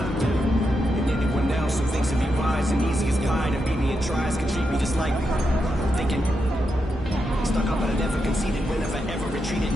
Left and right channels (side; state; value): both; normal; correlation 0.85